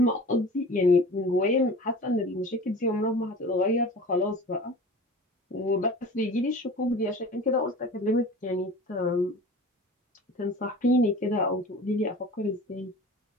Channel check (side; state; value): both; normal; correlation 0.39